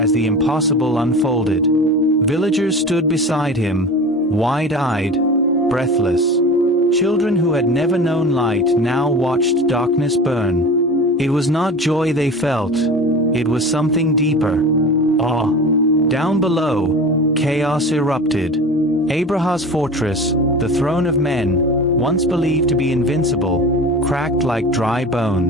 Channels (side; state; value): both; normal; correlation 0.34